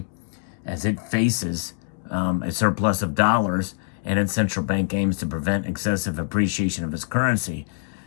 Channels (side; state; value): right; silent; digital silence